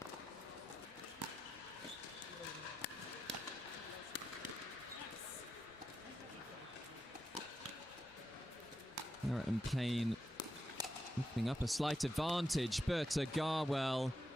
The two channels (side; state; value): both; normal; correlation 0.86